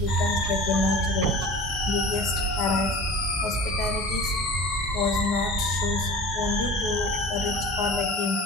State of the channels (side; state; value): both; normal; correlation 0.37